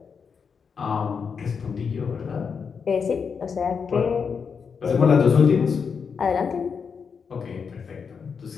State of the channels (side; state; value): right; quieter; 6.1 dB